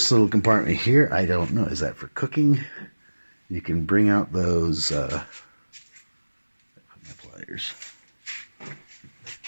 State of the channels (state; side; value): inverted; both; correlation -1.00